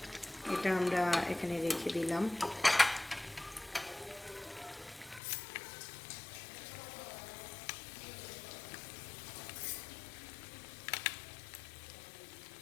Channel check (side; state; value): right; drops out; at 5.2 s